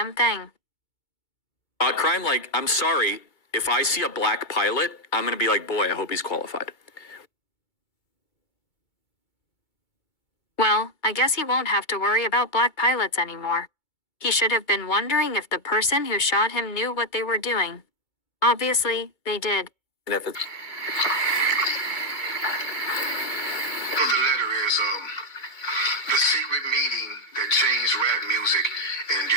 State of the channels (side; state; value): right; late; 2.2 ms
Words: thing. Crime, like, I'm sorry, if I see a black pilot, I'm gonna be like, boy, I hope he's qualified. Well, I guess he won't have to worry about black pilots anymore. He should have been wondering if the person who shot him knew what they were doing. Obviously, they did. And if it's The letter is the secret meeting that changed rap music and